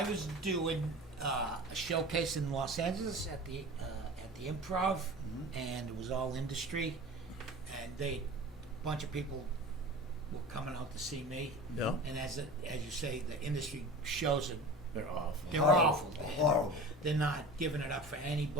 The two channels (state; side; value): normal; both; correlation 0.36